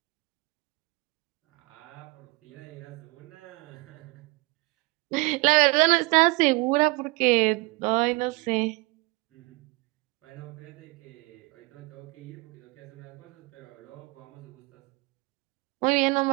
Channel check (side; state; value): left; quieter; 25.4 dB